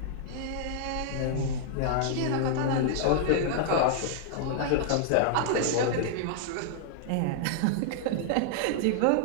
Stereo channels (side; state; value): both; different; correlation -0.01